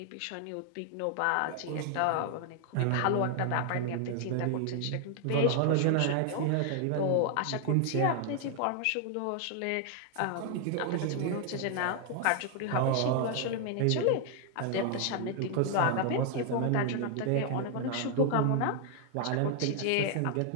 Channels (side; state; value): both; different; correlation 0.00